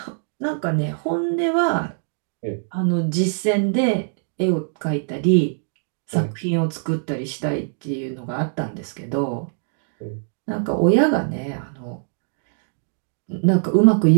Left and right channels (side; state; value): left; silent; digital silence